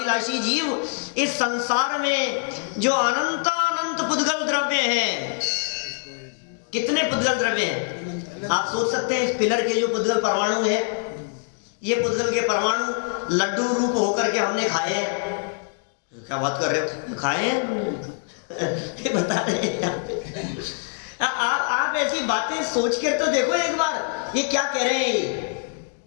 जीव, इस संसार में जो अनंत अनंत पुद्गल द्रव्य हैं, कितने पुद्गल द्रव्य हैं आप सोच सकते हैं? इस पिलर के जो पुद्गल परमाणु है, ये पुद्गल के परमाणु लड्डू रूप होकर के हमने खाए हैं। क्या बात कर रहे हो? खाए हैं ये बता रहे हैं आप ऐसी बातें सोच कर तो देखो एक बार, ये क्या कह रहे हैं।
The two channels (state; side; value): silent; right; 58 dB below the other